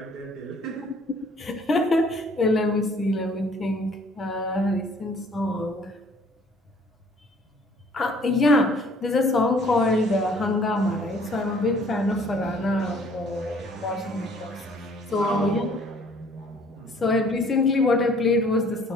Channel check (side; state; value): both; normal; correlation 0.57